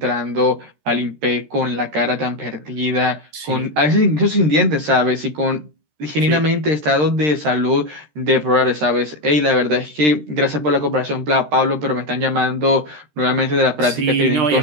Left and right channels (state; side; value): late; left; 13 ms